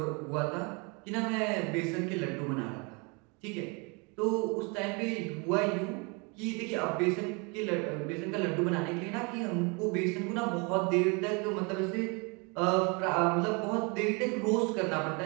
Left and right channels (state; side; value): quieter; left; 31.1 dB